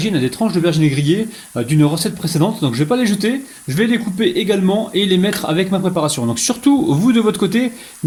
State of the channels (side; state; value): both; identical; correlation 1.00